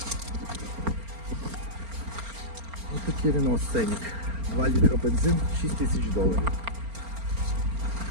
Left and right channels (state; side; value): late; left; 4.4 ms